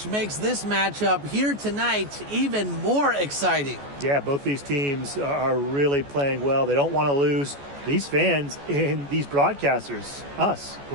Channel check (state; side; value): late; left; 14 ms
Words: makes this matchup here tonight even more exciting. Yeah, both these teams are really playing well. They don't want to lose. These fans and these broadcasters, us,